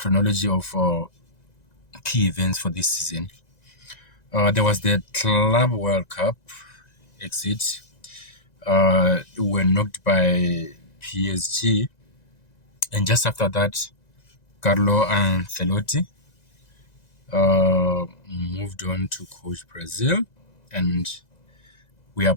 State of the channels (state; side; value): late; right; 1.9 ms